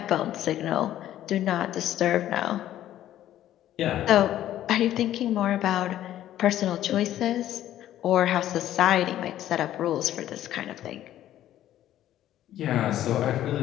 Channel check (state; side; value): quieter; right; 12.5 dB